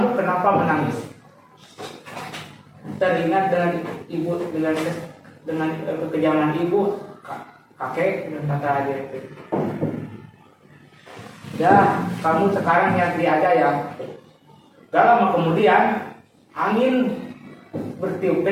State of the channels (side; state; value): both; identical; correlation 1.00